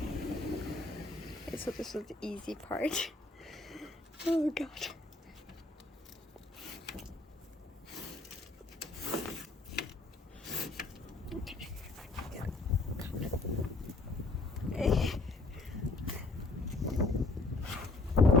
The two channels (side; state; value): right; quieter; 3.1 dB